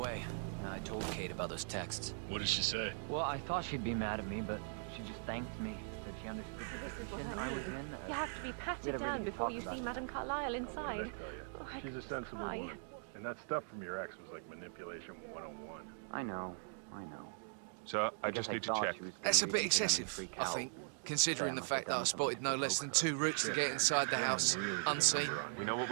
I told Kate about those texts. What did she say? Well, I thought she'd be mad at me, but she just thanked me. Said she understood the This is what position I I was mean. in. You have to be we patted had a really down good before talk you about see it. Madame Carlyle inside. What did I tell you? Oh, I She's a could sensible cry. woman. And that stuff from your ex was like manipulation 101. I know. Sir, I just guess need to thought check. she was gonna That's a read bit into them and excessive, freak I out. think, considering Say the I fact that I must have done spotted no something less than 2 routes to get inside the house, Really did a unseen. number on you. We know what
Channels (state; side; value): silent; left; digital silence